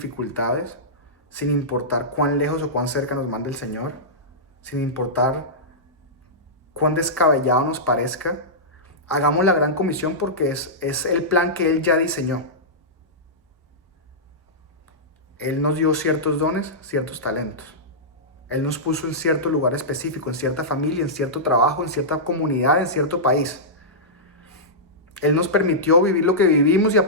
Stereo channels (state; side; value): normal; both; correlation -0.14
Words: sin importar cuán lejos o cuán cerca nos mande el Señor, sin importar cuán descabellado nos parezca, hagamos la gran comisión porque es el plan que Él ya diseñó. Él nos dio ciertos dones, ciertos talentos. Él nos puso en cierto lugar específico, en cierta familia, en cierto trabajo, en cierta comunidad, en cierto país. Él nos permitió vivir lo que vivimos y